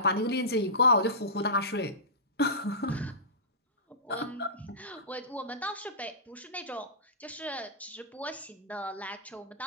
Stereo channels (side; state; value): both; normal; correlation -0.20